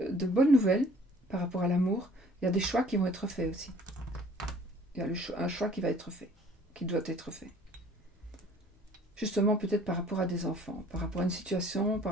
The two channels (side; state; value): both; normal; correlation 0.54